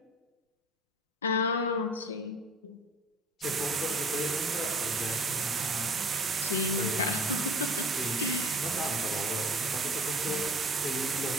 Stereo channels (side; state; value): both; normal; correlation 0.44